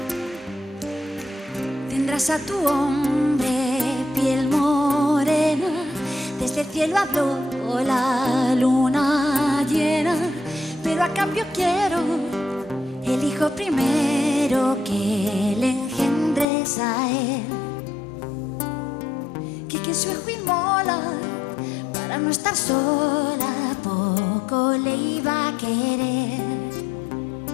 Tendrás a tu hombre piel morena, desde el cielo habló la luna llena, pero a cambio quiero el hijo primero que le engendres a él. Que su hijo inmola para no estar sola, poco le iba a querer.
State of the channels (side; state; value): right; drops out; at 16.4 s